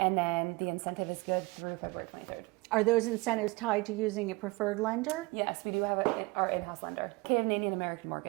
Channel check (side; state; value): left; quieter; 23.9 dB